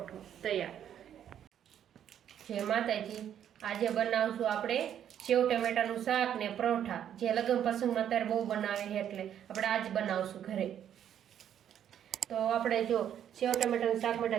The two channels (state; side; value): quieter; left; 9.8 dB